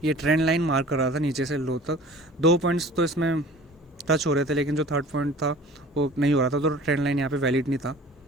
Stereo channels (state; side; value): normal; both; correlation 0.45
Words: ये ट्रेंड लाइन मार्क कर रहा था नीचे से लो तक। 2 पॉइंट्स तो इसमें टच हो रहे थे, लेकिन जो थर्ड पॉइंट था वो नहीं हो रहा था, तो ट्रेंड लाइन यहाँ पे वैलिड नहीं था,